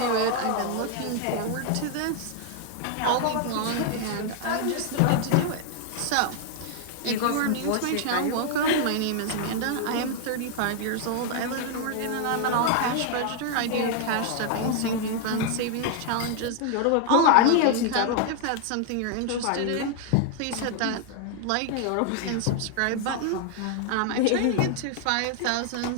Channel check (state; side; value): different; both; correlation 0.00